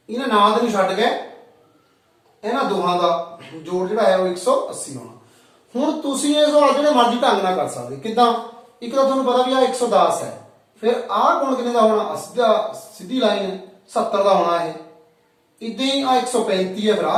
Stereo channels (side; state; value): both; identical; correlation 1.00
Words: ਇਹਨਾਂ ਨਾਲ ਦੇ ਨੂੰ ਛੱਡ ਕੇ ਇਹਨਾਂ ਦੋਹਾਂ ਦਾ ਜੋੜ ਜਿਹੜਾ ਹੈ ਉਹ 180 ਹੋਣਾ। ਹੁਣ ਤੁਸੀਂ ਇਹ ਸਵਾਲ ਜਿਹੜੇ ਮਰਜ਼ੀ ਢੰਗ ਨਾਲ ਕਰ ਸਕਦੇ। ਕਿੱਦਾਂ? ਇੱਕ ਤਾਂ ਤੁਹਾਨੂੰ ਪਤਾ ਵੀ ਆ 110 ਹੈ, ਫਿਰ ਆਹ ਕੋਣ ਕਿੰਨੇ ਦਾ ਹੋਣਾ? ਸਿੱਧੀ ਲਾਈਨ ਹੈ 70 ਦਾ ਹੋਣਾ। ਇਹ ਇਦਾਂ ਹੀ ਆ 135 ਹੈ, ਫਿਰ